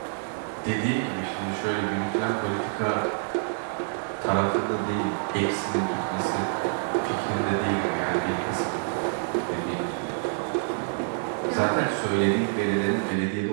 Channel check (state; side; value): silent; left; digital silence